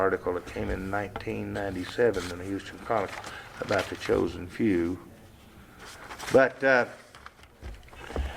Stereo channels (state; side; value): identical; both; correlation 1.00